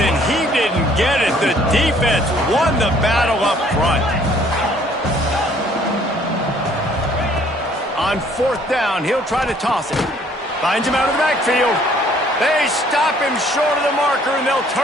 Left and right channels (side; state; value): both; normal; correlation 0.60